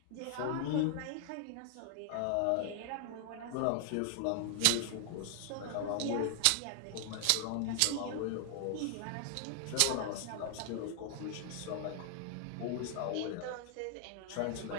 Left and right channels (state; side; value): different; both; correlation 0.00